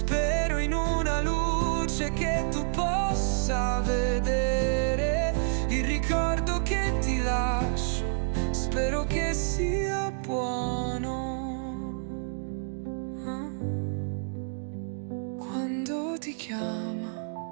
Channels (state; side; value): silent; left; digital silence